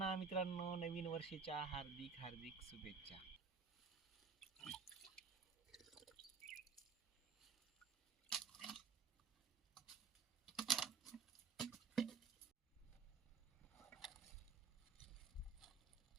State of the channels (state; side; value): quieter; left; 5.4 dB